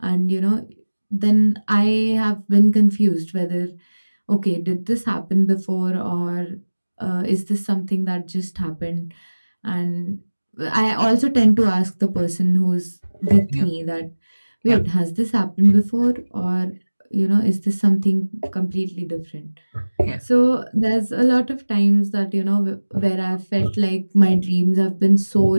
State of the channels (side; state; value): both; inverted; correlation -1.00